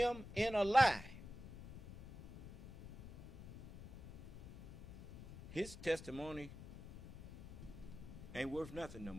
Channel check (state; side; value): noise; left; rumble, 13 dB below the sound